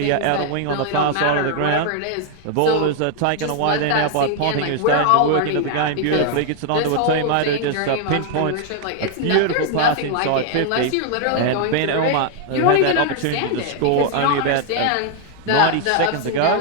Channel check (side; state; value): both; different; correlation 0.00